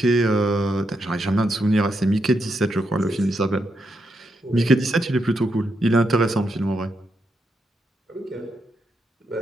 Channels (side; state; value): both; normal; correlation 0.82